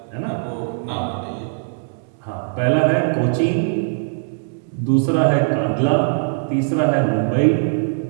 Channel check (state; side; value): silent; left; digital silence